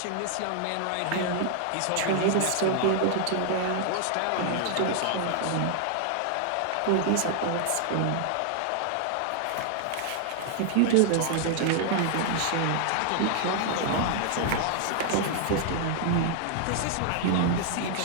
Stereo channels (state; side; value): different; both; correlation 0.00